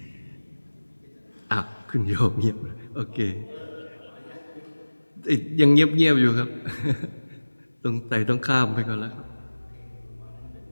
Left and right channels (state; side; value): inverted; both; correlation -1.00